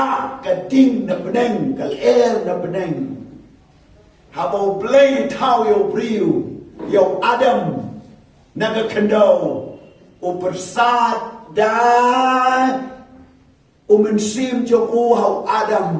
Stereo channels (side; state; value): both; identical; correlation 1.00